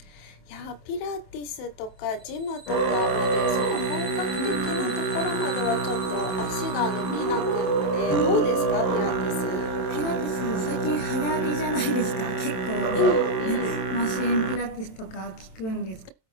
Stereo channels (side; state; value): right; late; 27 ms